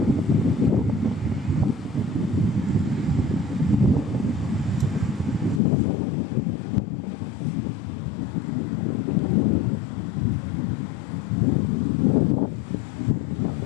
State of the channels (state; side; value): drops out; right; at 5.6 s